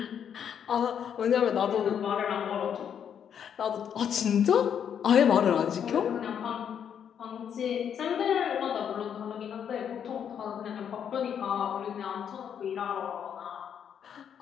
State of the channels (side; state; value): right; quieter; 8.4 dB